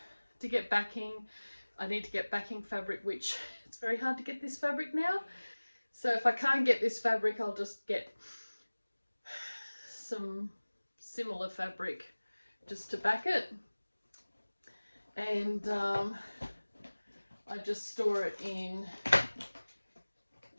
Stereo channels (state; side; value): inverted; both; correlation -1.00